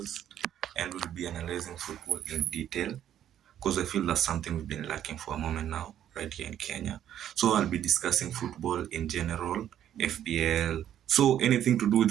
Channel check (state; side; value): quieter; left; 10.7 dB